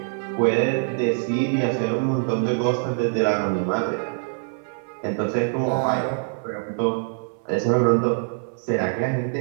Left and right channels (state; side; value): silent; left; 58 dB below the other